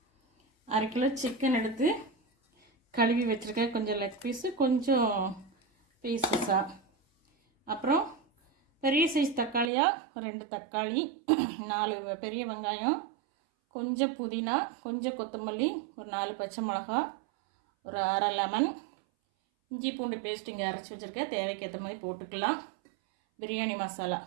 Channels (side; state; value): left; drops out; at 9.7 s